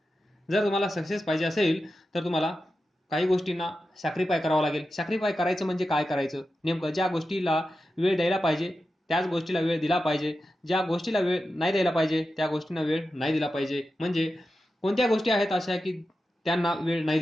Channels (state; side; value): normal; both; correlation 0.91